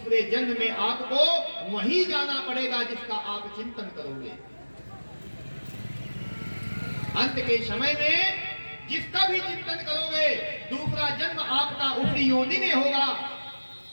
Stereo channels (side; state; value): both; inverted; correlation -1.00